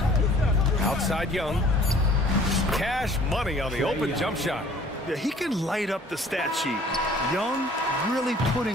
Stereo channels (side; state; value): both; normal; correlation 0.53